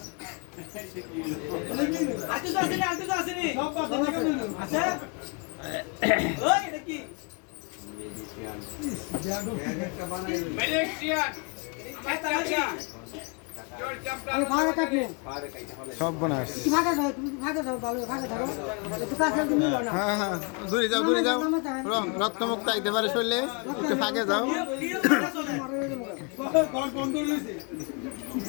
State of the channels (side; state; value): right; quieter; 32.9 dB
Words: সব বোনাস। হ্যাঁ, দূরে যাও, দূরে যাও। রক্তমুক্ত আইতে পারে শরীরে, একটু ফাঁকে যাও।